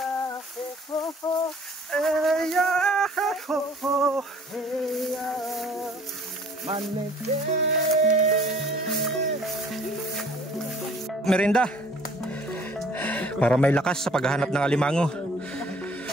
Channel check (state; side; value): normal; both; correlation 0.55